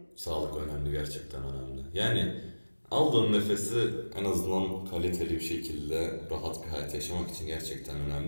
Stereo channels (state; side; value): inverted; both; correlation -1.00